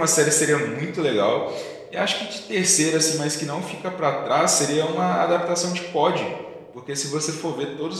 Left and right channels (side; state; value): both; identical; correlation 1.00